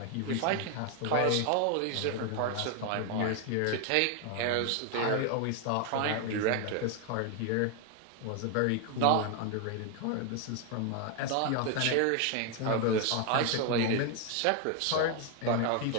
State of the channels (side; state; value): both; different; correlation 0.01